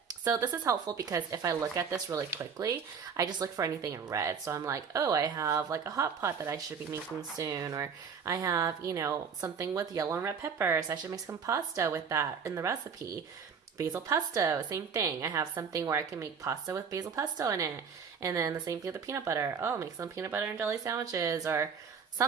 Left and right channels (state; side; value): quieter; left; 6.4 dB